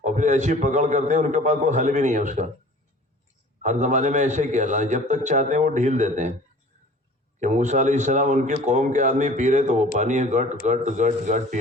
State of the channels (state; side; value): normal; both; correlation 0.46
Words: اور پھر ایسی پکڑ کرتے ہیں ان کے پاس کوئی حل بھی نہیں ہے اس کا۔ ہر زمانے میں ایسے ہی کیا اللہ، جب تک چاہتے ہیں وہ ڈھیل دیتے ہیں۔ کہ موسیٰ علیہ السلام ان کی قوم کے آدمی پی رہے تو وہ پانی گٹ گٹ گٹ گٹ پی